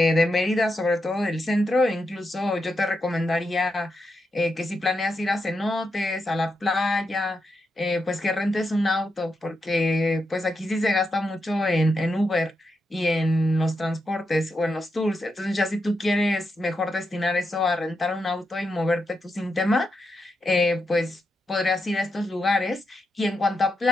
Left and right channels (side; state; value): both; normal; correlation 0.85